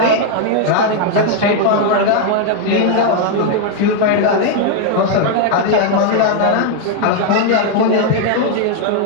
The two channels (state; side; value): different; both; correlation 0.00